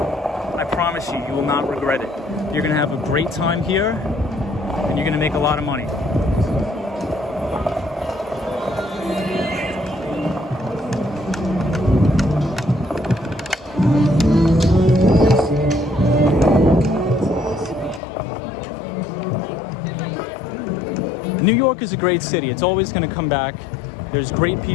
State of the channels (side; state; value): right; drops out; at 18.0 s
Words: promise you, you will not regret it. You're gonna have a great time here, and you're gonna make a lot of money. New York is a great city. It's always going to come back. There's great